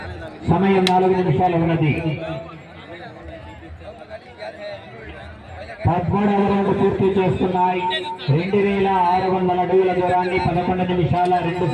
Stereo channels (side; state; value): both; identical; correlation 1.00